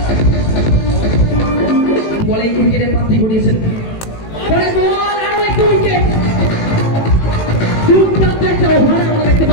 বলে উইকেটের প্রাপ্তি ঘটিয়েছেন। পরে বল আরো একটা উইকেট। দুর্দান্ত একটা ওভার আমরা দেখতে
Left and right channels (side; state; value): right; late; 18 ms